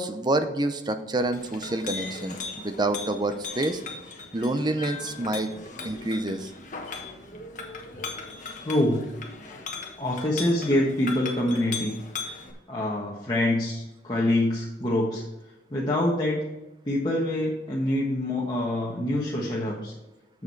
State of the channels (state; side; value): normal; both; correlation 0.66